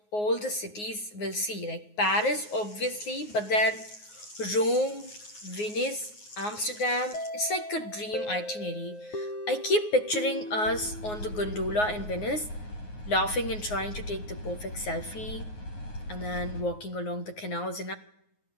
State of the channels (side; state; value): right; late; 9.5 ms